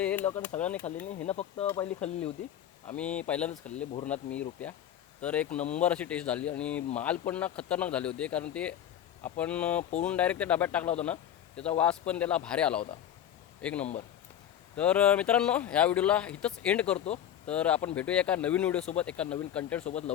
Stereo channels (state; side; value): quieter; right; 10.4 dB